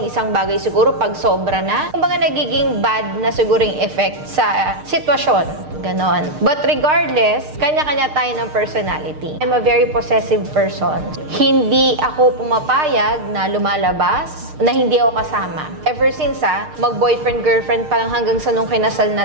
isang bagay siguro pag sobra na. Kumbaga nagiging bad na siguro yung effect sa sitwasyon. Ganon. But regardless, kanya-kanya tayo ng personality. I'm a very possessive person. Hindi ako pumapayag na lumalabas na hindi ako kasama. Ever since mag-boyfriend, girlfriend pa lang hanggang sa nung kinasal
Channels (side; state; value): left; late; 6.6 ms